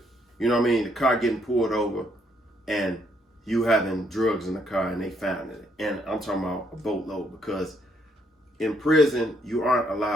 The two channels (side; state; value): both; normal; correlation 0.72